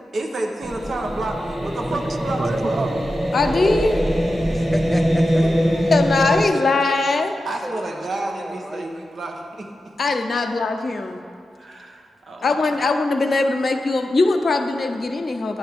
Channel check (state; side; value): normal; both; correlation 0.91